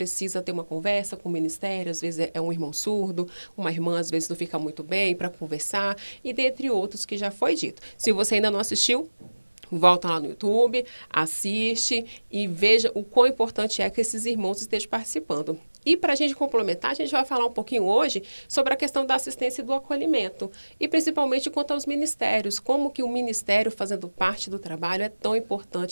ter uma conversa com o ministério, às vezes é um irmão surdo, uma irmã, às vezes não fica muito bem para conversar, e dentre outros que já foi dito. Se você ainda não assistiu, volta lá no YouTube, assiste e veja o quão importante é que esses irmãos estejam participando. E para a gente complementar, a gente vai falar um pouquinho hoje sobre a questão da assistência e do acolhimento. E principalmente quanto aos ministérios, como que o ministério fazendo parte do trabalho é tão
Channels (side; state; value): both; inverted; correlation -1.00